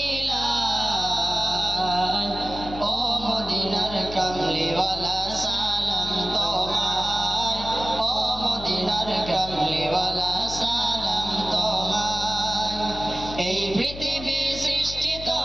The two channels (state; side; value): noise; left; hum, 11 dB below the sound